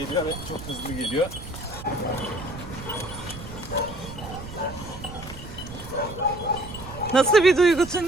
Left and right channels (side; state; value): right; noise; rumble, 12 dB below the sound